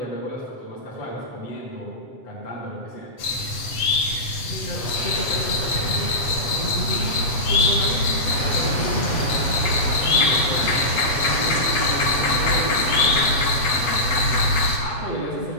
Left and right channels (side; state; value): right; late; 8.0 ms